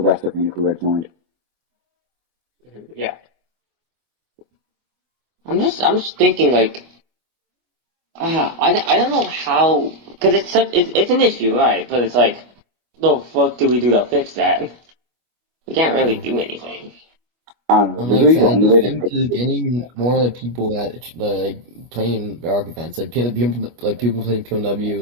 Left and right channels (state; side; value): late; left; 25 ms